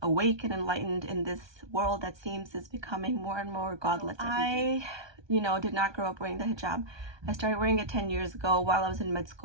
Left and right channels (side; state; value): left; late; 1.2 ms